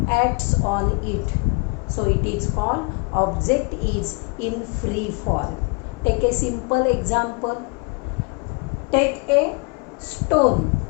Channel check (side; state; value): right; quieter; 32.0 dB